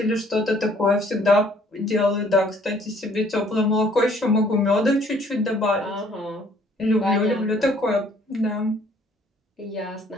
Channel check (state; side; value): normal; both; correlation 0.60